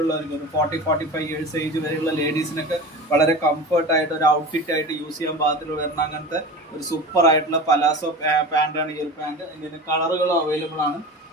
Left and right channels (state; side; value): normal; both; correlation 0.32